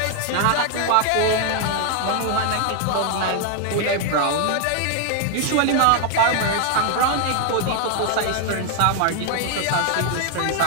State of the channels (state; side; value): different; both; correlation 0.00